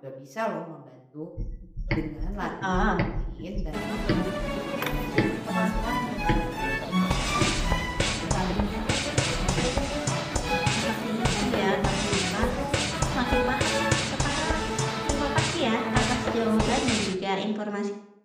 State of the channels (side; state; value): both; identical; correlation 1.00